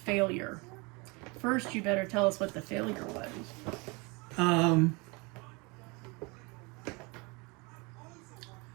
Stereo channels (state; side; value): quieter; left; 28.0 dB